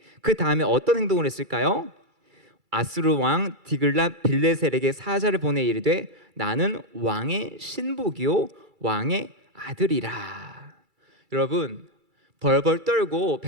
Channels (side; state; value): left; late; 2.3 ms